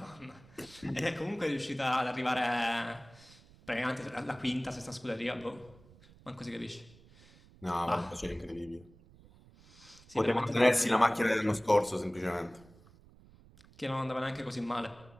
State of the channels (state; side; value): noise; right; rumble, 24 dB below the sound